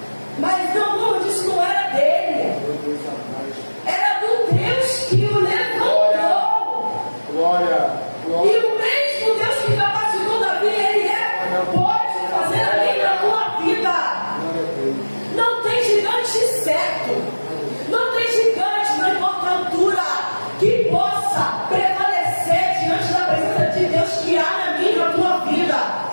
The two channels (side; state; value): both; inverted; correlation -1.00